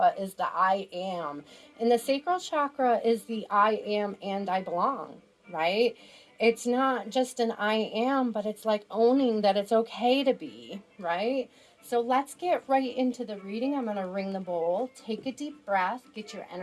is the I am. And the sacral chakra is the I am and I belong, right? It's not just an I am, but it's like owning that it's okay to be, right? So let's get right into the reading. I'm going to ring the bowl. Take a deep breath. Get your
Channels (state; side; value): identical; both; correlation 1.00